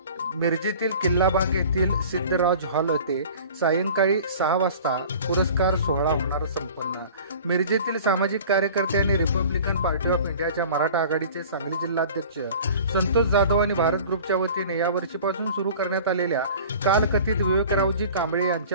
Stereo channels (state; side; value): inverted; both; correlation -0.43